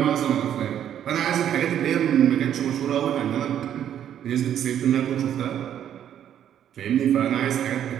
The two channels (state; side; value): quieter; left; 10.1 dB